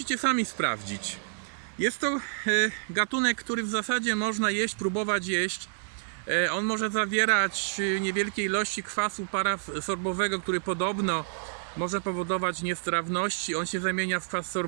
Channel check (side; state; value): left; silent; digital silence